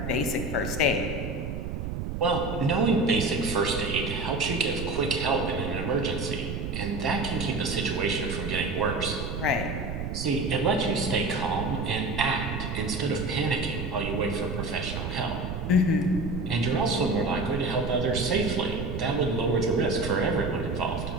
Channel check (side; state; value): right; noise; rumble, 4 dB below the sound